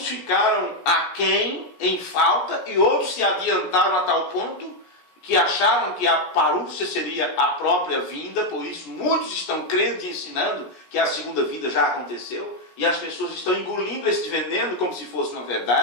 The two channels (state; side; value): late; right; 17 ms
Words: ficaram aquém, em falta, e outros se adiantaram a tal ponto que acharam que a parúcia seria a própria vinda. Por isso muitos estão crendo e ensinando que a segunda vinda já aconteceu, e as pessoas estão engolindo esse veneno como se fosse uma